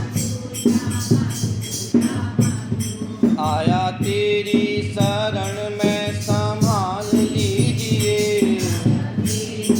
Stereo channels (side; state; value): both; identical; correlation 1.00